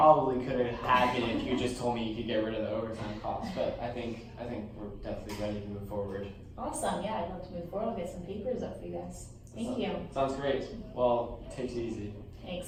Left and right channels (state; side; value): identical; both; correlation 1.00